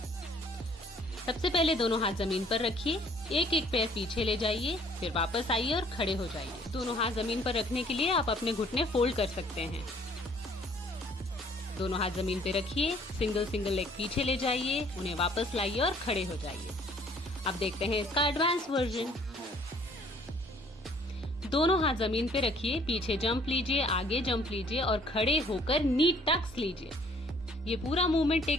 सबसे पहले दोनों हाथ जमीन पर रखिए। एक एक पैर पीछे ले जाइए, फिर वापस आइए और खड़े हो जाइए। दोनों हाथ जमीन पर रखने के लिए आप अपने घुटने फोल्ड कर सकते हैं। दोनों हाथ जमीन पे रखिए, सिंगल सिंगल लेग पीछे ले जाइए, उन्हें वापस लाइए और खड़े हो जाइए। अब देखते हैं इसका एडवांस वर्जन। दोनों हाथ जमीन पे रखिए, पीछे जंप लीजिए, आगे जंप लीजिए और खड़े होकर नी टक्स लीजिए। ये पूरा मूवमेंट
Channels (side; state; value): both; normal; correlation 0.59